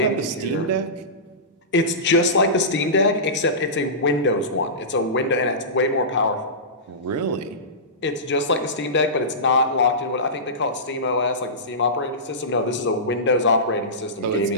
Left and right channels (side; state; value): both; normal; correlation -0.20